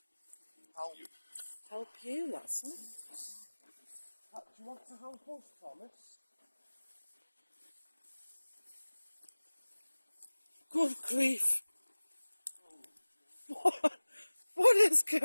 Help you, that's it. Do you want to help us, Thomas? Good grief. What is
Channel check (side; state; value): both; inverted; correlation -1.00